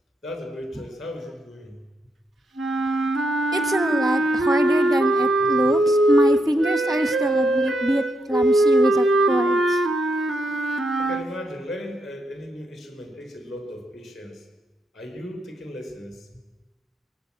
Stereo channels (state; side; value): normal; both; correlation 0.80